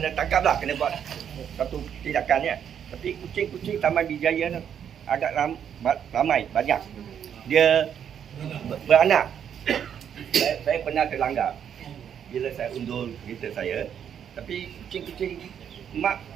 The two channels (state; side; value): quieter; left; 8.6 dB